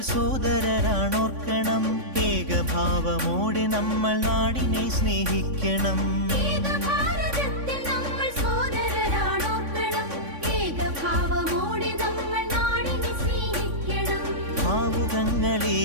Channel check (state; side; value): late; left; 3.5 ms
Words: സോദരരാണോർക്കണം, ഏകഭാവമോടെ നമ്മൾ നാടിനെ സ്നേഹിക്കണം.